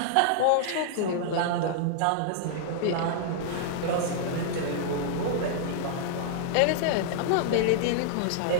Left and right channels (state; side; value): different; both; correlation -0.01